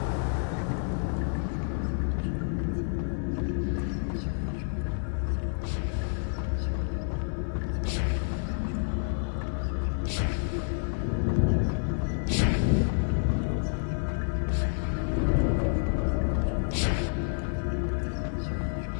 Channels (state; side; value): silent; right; 56 dB below the other